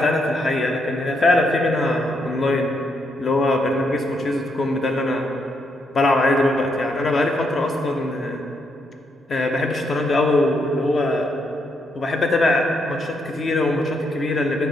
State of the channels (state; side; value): normal; both; correlation 0.78